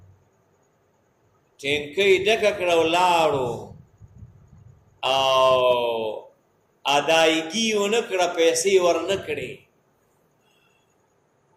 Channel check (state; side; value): identical; both; correlation 1.00